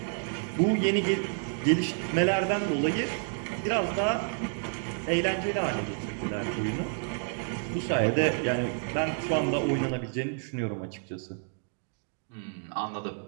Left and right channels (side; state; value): left; silent; 58 dB below the other